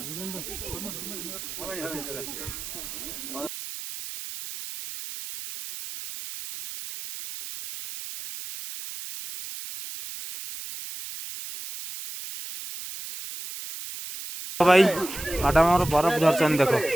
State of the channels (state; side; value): noise; right; hiss, 9 dB below the sound